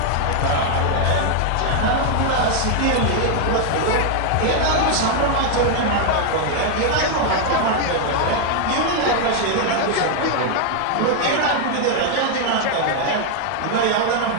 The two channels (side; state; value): both; different; correlation 0.00